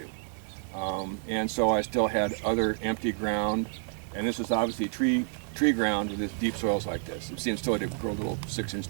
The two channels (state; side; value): silent; left; 55 dB below the other